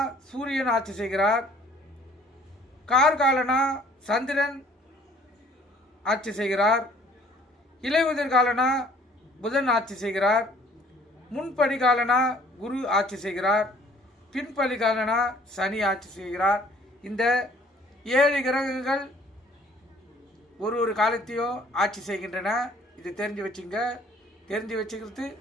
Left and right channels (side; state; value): both; normal; correlation 0.57